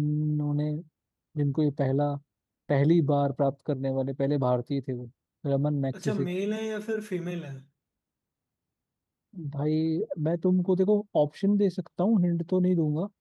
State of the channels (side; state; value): both; identical; correlation 1.00